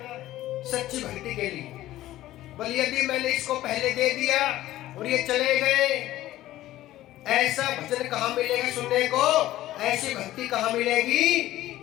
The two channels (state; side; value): quieter; right; 14.9 dB